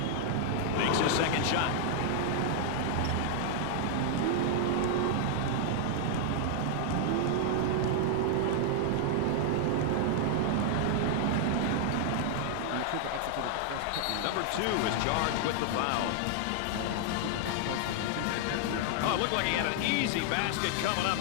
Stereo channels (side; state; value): both; different; correlation 0.00